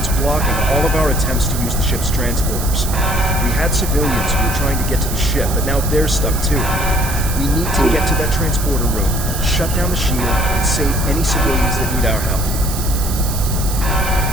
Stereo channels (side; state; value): right; noise; hiss, 8 dB below the sound